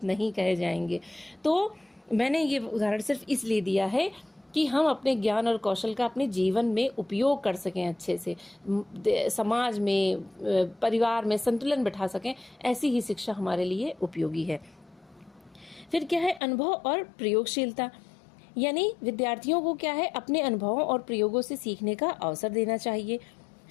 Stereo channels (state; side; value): drops out; right; at 16.4 s